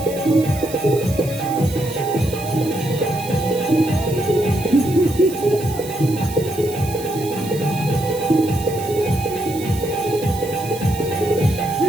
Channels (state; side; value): noise; right; hiss, 14 dB below the sound